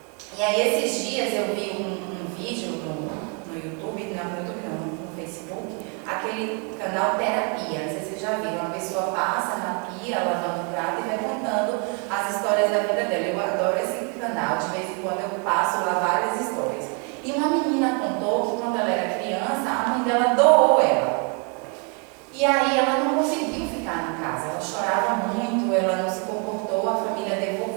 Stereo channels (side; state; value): left; quieter; 36.5 dB